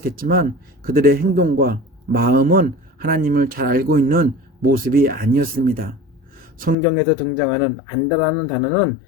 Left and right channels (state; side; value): drops out; right; at 6.8 s